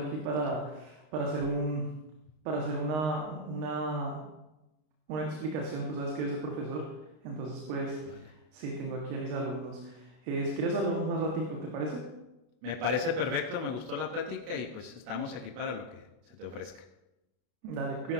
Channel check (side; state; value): left; late; 32 ms